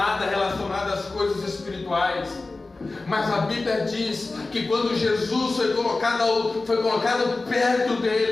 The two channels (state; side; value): quieter; right; 3.4 dB